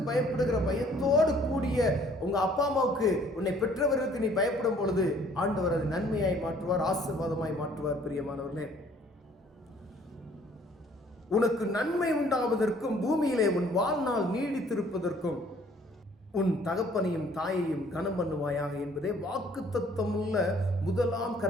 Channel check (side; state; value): both; normal; correlation 0.58